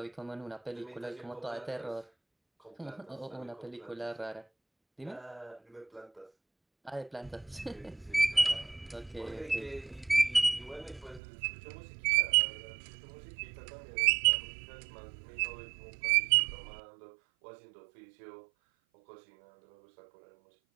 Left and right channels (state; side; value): drops out; left; at 11.2 s